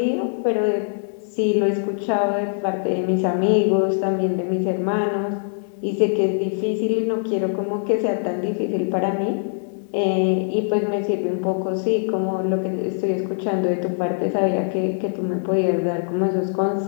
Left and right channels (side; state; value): right; silent; digital silence